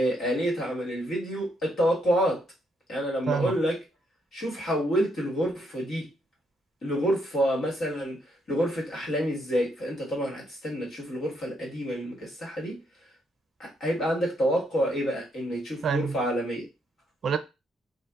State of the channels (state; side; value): normal; both; correlation 0.75